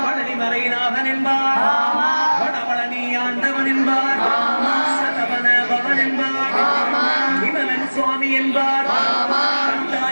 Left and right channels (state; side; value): inverted; both; correlation -1.00